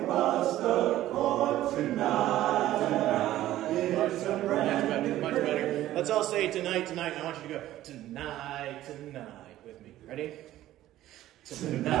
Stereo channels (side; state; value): left; quieter; 14.2 dB